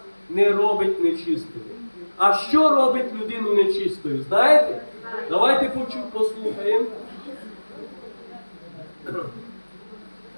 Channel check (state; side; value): inverted; both; correlation -1.00